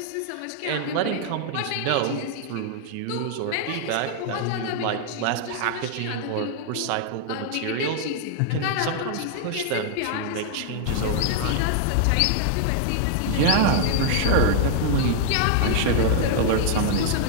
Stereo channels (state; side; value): different; both; correlation -0.01